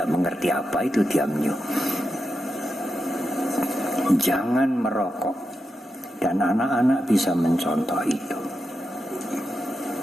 mengerti apa itu tiam nyo. Jangan merokok. Dan anak-anak bisa mencontoh itu.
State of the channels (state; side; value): normal; both; correlation 0.87